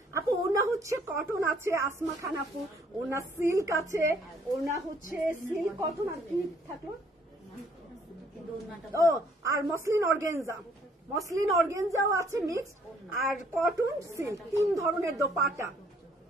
আপু ওনা হচ্ছে কটন আছে, আসমা খান আপু ওনা সিল্ক আছে, ওনা হচ্ছে সিল্ক কটন, আর কি থাকলো? ও আর মসলিন অর্গেনজা, মসলিন অর্গেনজাও আছে মিক্সড, আর কটন সিল্ক, 3 ধরনের দোপাট্টা।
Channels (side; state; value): both; normal; correlation 0.63